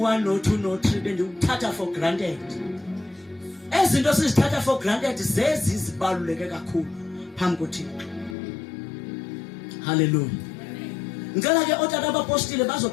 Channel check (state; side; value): drops out; right; at 8.3 s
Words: no2 no3 bendikuthatha for granted. Ezinto sizithatha for granted zezi zibaluleke kakhulu phambi koThixo. Hallelujah. Ngicela ke otata abapostile